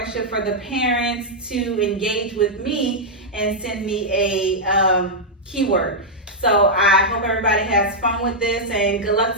for the parents to engage with me and send me a keyword. So I hope everybody has fun with this, and good luck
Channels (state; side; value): normal; both; correlation -0.05